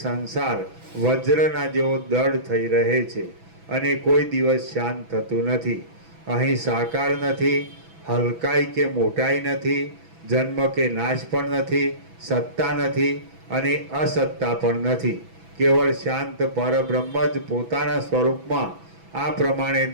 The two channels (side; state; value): left; late; 6.1 ms